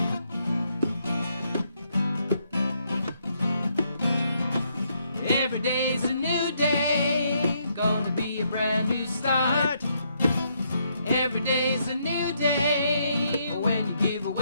Every day's a new day, gonna be a brand new start. Every day's a new day when you give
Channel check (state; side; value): inverted; both; correlation -0.74